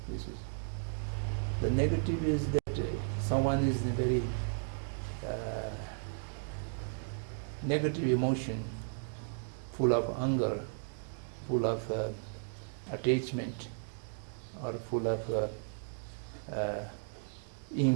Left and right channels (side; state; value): left; silent; digital silence